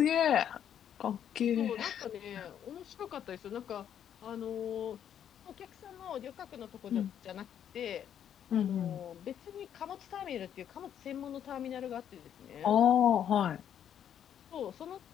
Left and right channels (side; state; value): right; quieter; 9.5 dB